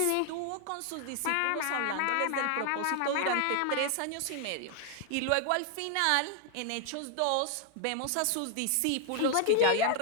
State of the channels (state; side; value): different; both; correlation 0.00